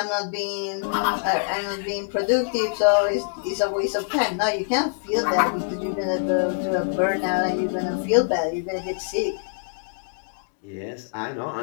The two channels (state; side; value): silent; right; digital silence